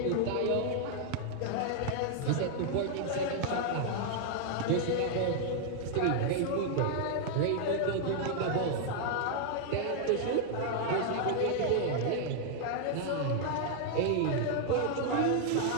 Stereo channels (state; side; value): different; both; correlation 0.00